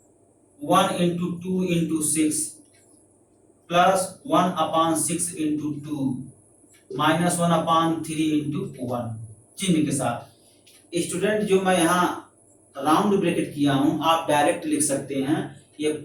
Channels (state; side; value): identical; both; correlation 1.00